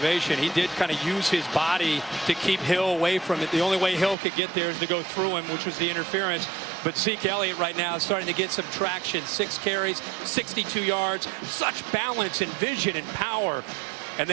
He did kind of use his body to keep Hill away from it. The only way Hill could get there is to go through him, which was the interference. But Zeke Elliott right now is starting to get some traction. 6 carries, 62 yards, such balance and vision and power. And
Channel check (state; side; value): drops out; left; at 4.2 s